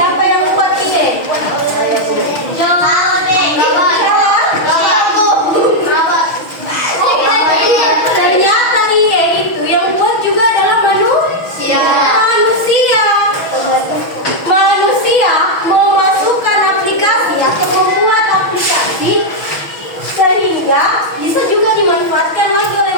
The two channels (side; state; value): right; late; 6.2 ms